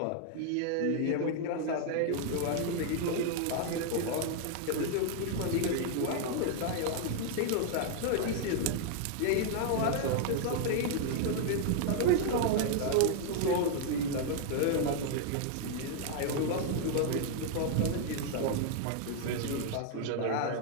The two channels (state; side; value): different; both; correlation 0.00